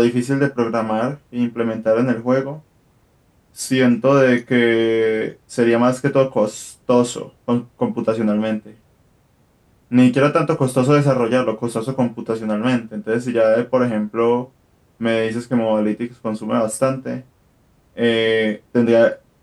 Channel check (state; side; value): identical; both; correlation 1.00